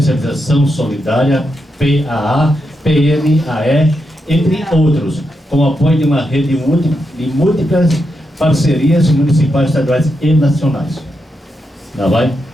solidária, PAA, PNAE, entre outros, com apoio de uma rede de múltiplas parcerias municipais, estaduais e nacionais. Tá, vai?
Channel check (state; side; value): normal; both; correlation 0.84